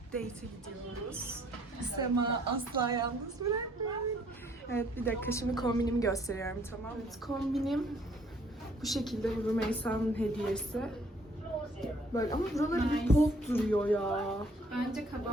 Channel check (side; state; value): both; normal; correlation 0.62